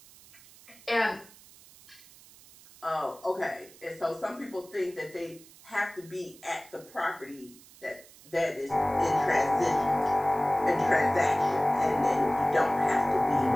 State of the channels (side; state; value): right; noise; hiss, 23 dB below the sound